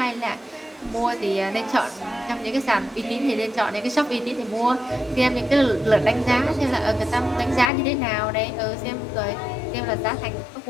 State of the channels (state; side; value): drops out; right; at 7.7 s